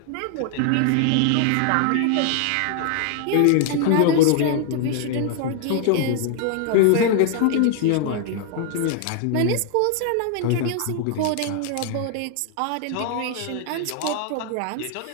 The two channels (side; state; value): both; different; correlation 0.00